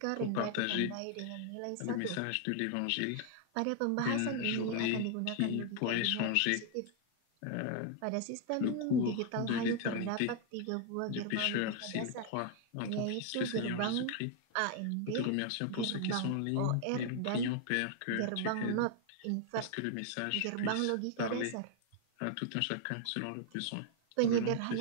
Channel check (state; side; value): different; both; correlation 0.00